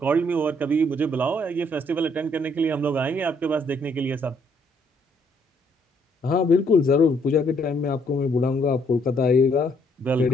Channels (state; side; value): normal; both; correlation 0.68